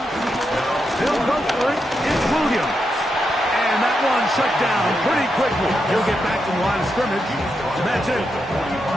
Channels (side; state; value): both; normal; correlation 0.84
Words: They'll go for it. It's Williams. And that one shut down pretty quickly. He'll get back to the line of scrimmage. That's it.